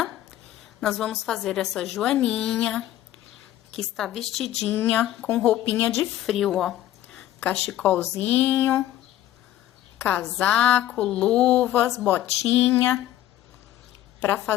nós vamos fazer essa joaninha, que está vestidinha com roupinha de frio, ó. Cachecolzinho, casaco, luvas, botinha. Para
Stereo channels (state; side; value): quieter; right; 13.4 dB